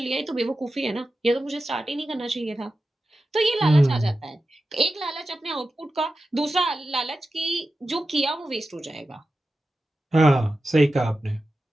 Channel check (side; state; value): both; normal; correlation 0.92